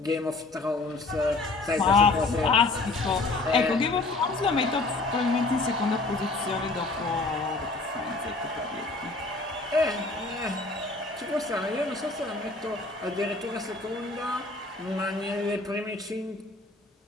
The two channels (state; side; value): quieter; right; 3.3 dB